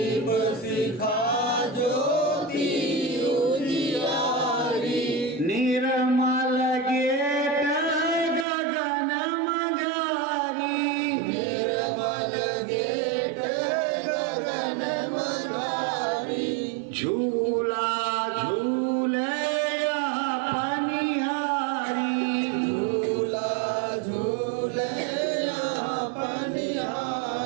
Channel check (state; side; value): drops out; left; at 8.5 s